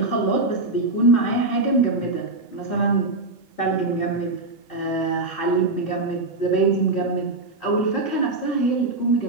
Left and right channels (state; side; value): quieter; left; 3.2 dB